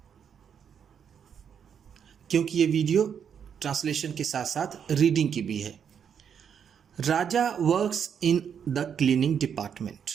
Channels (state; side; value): quieter; left; 7.8 dB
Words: क्योंकि ये वीडियो ट्रांसलेशन के साथ साथ रीडिंग की भी है। Raja works in the cleaning department.